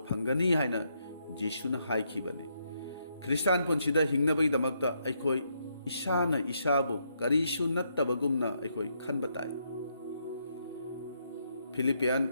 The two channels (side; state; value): both; inverted; correlation -0.77